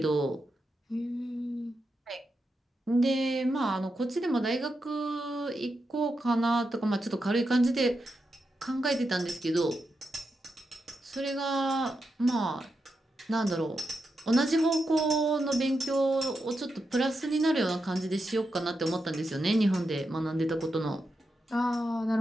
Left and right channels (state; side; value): normal; both; correlation 0.86